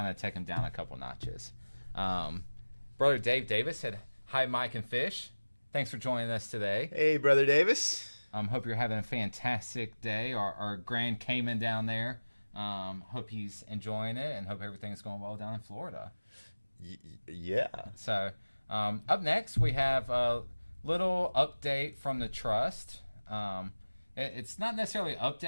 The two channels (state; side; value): inverted; both; correlation -1.00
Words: to take him down a couple notches. Brother Dave Davis said, "Hi, Mike and Fish. Thanks for joining us today." Hey, Brother Davis. Hope you're having a fantastic day. Our Grand Cayman down there. Hope he's enjoying it and hope everything's going well down in Florida. Yeah. So up next, we have a little update from the Trust. It's not necessarily an